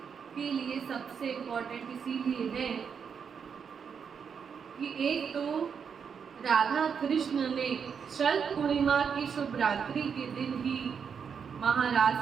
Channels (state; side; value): quieter; left; 6.7 dB